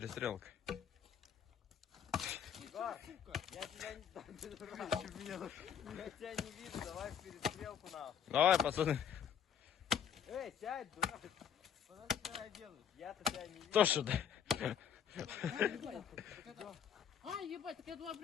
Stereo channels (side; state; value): right; quieter; 8.3 dB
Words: Я тебя не вижу, давай в перестрелку нахуй. Давай, пацаны. Эй, сядь, дурак. Что ты меня делаешь? Я-то тебя не вижу. Кто сюда? А, ебать, так я два